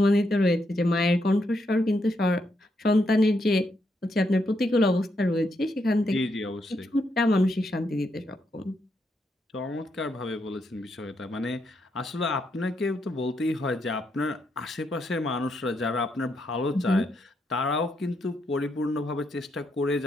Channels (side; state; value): both; normal; correlation 0.79